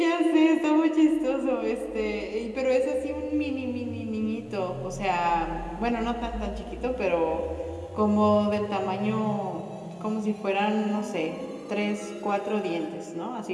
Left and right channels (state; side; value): identical; both; correlation 1.00